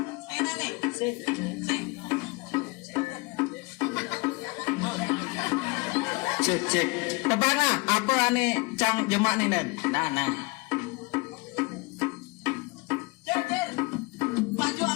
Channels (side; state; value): right; quieter; 26.4 dB